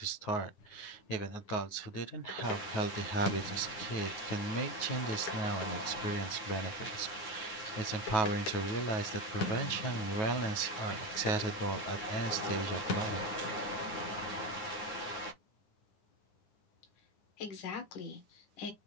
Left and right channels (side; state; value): right; late; 9.4 ms